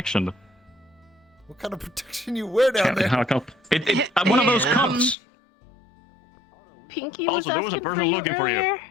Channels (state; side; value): drops out; right; at 5.2 s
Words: What kind of protection you wear down there? One of those cups. Pinky was Also, there was a asking for person you looking for you. earlier.